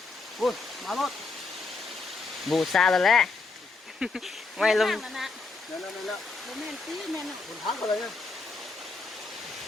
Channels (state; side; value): quieter; right; 3.9 dB